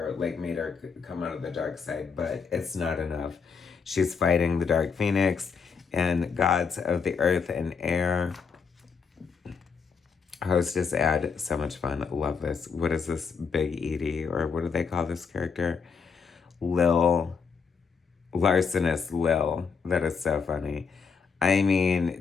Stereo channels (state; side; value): quieter; right; 5.7 dB